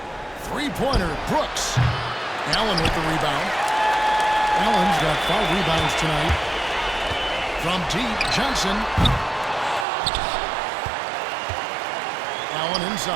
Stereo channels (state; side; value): drops out; left; at 9.9 s